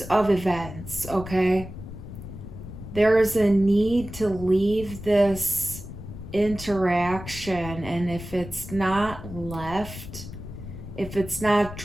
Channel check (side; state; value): left; noise; rumble, 12 dB below the sound